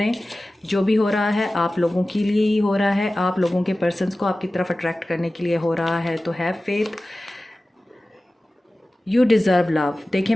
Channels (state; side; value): normal; both; correlation 0.96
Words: जो भी हो रहा है आप लोगों के लिए ही हो रहा है, आप लोगों के पर्सन्स को आपकी तरफ अट्रैक्ट करने के लिए हो रहा है। तो have faith, you deserve love. देखिए,